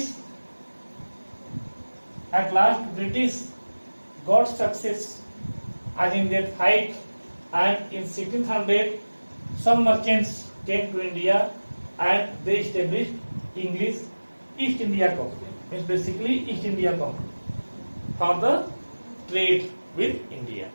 got success as in their fight, and in 1600 some merchants came to India and they established English East India Company. Means basically East India Company for the trade with India.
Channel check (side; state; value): both; inverted; correlation -1.00